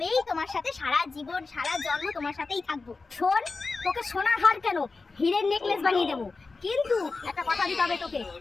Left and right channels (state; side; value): quieter; right; 4.0 dB